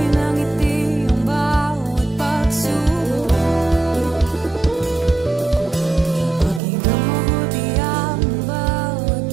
ang ngiti ang bawat pagsubok. Pakinggan mabuti ang bawat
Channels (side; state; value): left; drops out; at 6.6 s